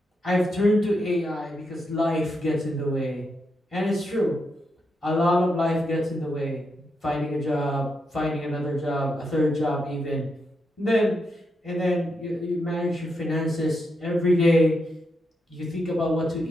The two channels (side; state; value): both; normal; correlation 0.83